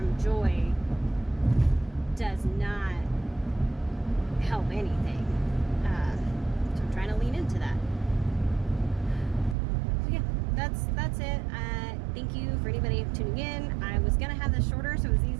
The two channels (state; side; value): drops out; left; at 9.6 s